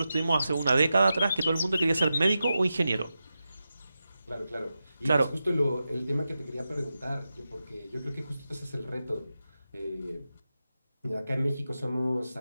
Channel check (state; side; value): inverted; both; correlation -0.91